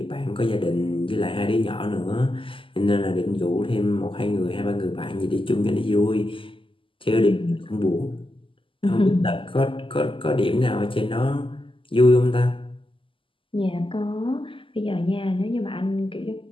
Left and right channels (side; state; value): right; late; 0.25 ms